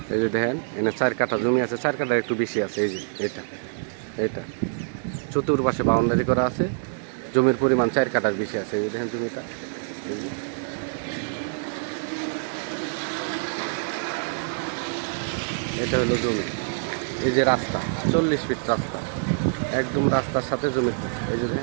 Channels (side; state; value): left; silent; digital silence